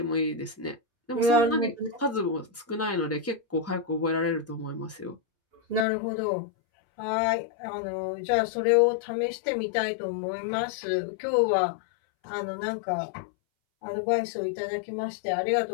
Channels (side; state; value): right; drops out; at 5.9 s